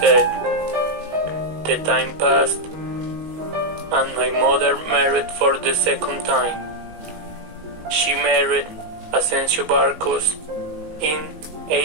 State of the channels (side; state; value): left; late; 19 ms